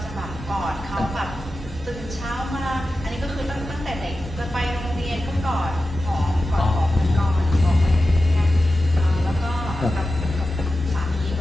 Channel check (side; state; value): both; normal; correlation 0.93